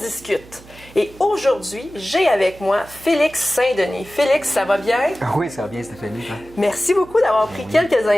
Et aujourd'hui, j'ai avec moi Félix Saint-Denis. Félix, ça va bien? Oui, ça va bien, Stéphanie. Toi? Merci beaucoup d'avoir pris quelques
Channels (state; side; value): noise; right; hum, 22 dB below the sound